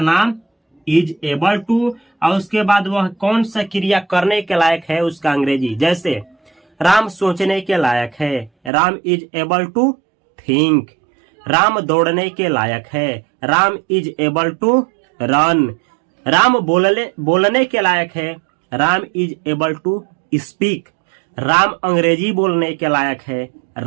इज एबल टू, और उसके बाद वह कौन सा क्रिया करने के लायक है उसका अंग्रेजी। जैसे राम सोचने के लायक है, Ram is able to think. Ram दौड़ने के लायक है, Ram is able to run. Ram बोलने के लायक है, Ram is able to speak. Ram Angrezi बोलने के लायक है,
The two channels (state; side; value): drops out; left; at 8.7 s